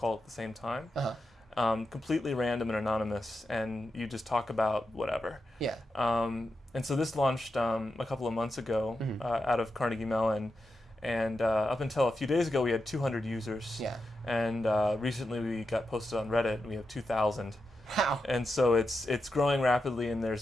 at the same time. Uh-huh. completely random and anonymous, and you just talk about whatever. Yeah. And so this launched a couple of months ago out of Carnegie Mellon, and up until a few days ago we had 200 users. Yeah. And recently we got posted on Reddit, and we have 2,000. Wow. And so it's growing rapidly, and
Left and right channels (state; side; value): normal; both; correlation 0.88